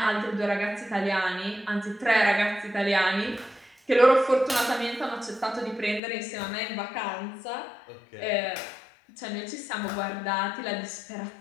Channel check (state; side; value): drops out; right; at 6.0 s